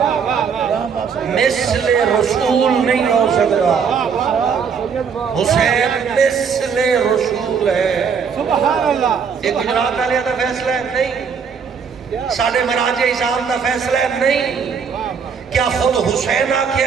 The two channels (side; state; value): left; quieter; 6.4 dB